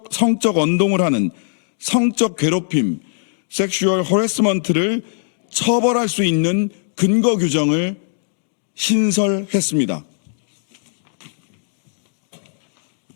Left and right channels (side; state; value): right; silent; digital silence